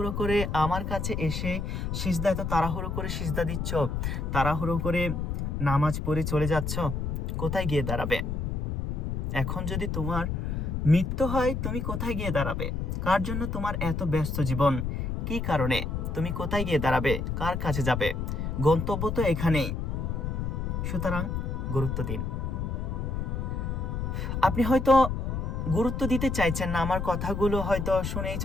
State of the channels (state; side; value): noise; left; rumble, 2 dB below the sound